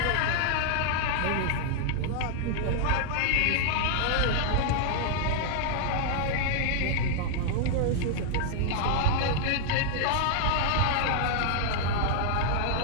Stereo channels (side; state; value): both; different; correlation -0.01